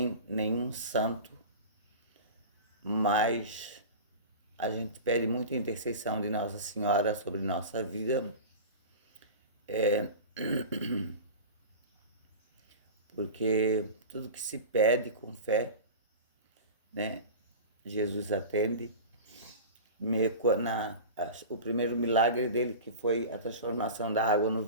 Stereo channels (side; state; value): both; inverted; correlation -0.32